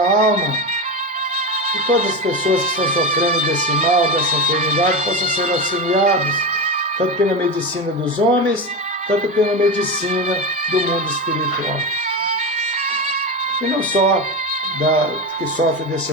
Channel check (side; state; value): both; normal; correlation 0.18